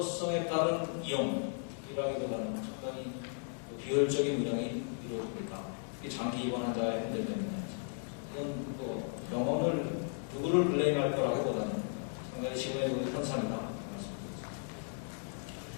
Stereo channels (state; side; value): silent; right; 54 dB below the other